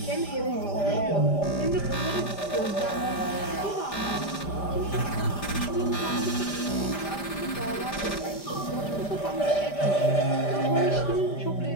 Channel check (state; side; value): late; right; 5.1 ms